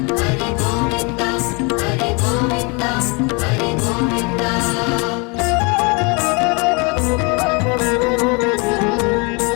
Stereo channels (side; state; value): right; quieter; 30.7 dB